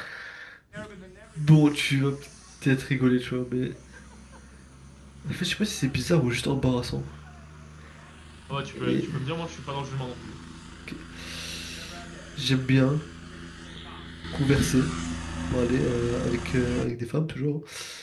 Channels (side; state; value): both; identical; correlation 1.00